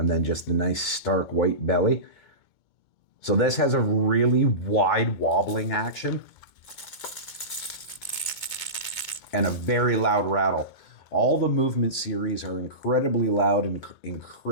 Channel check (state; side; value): late; right; 2.2 ms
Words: then just the nice stark white belly. So this has a really wide wobbling action and a very loud rattle. All the Movement series are incredibly loud and